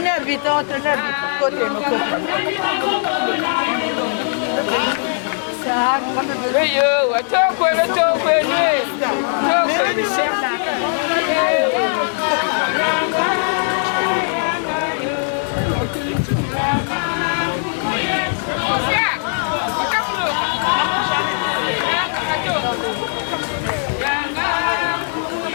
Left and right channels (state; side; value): silent; right; digital silence